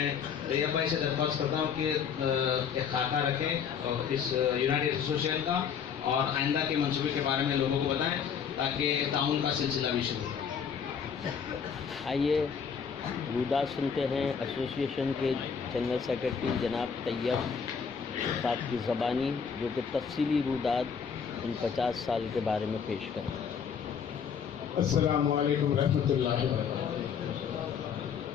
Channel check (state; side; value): quieter; right; 6.9 dB